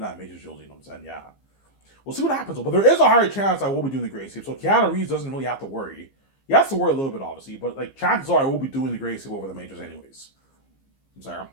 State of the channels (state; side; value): late; right; 15 ms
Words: Matrix trilogy, you know what I'm saying? Yeah. We'll see what happens, but there is a higher chance I will be doing the Great Escape. So Keanu Reeves doesn't really have to worry. He has to worry a little bit, obviously, but like chances are I will be doing the Great Escape over the Matrix anyways. I'm sorry.